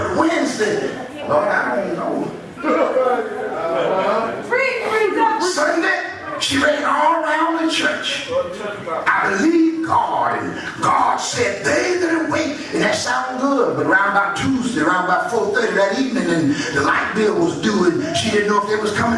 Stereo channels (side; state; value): both; identical; correlation 1.00